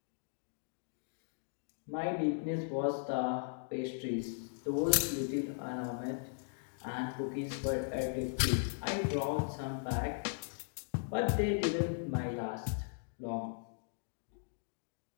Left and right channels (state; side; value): silent; right; digital silence